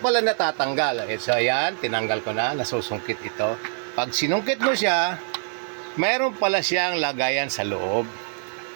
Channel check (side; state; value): left; silent; digital silence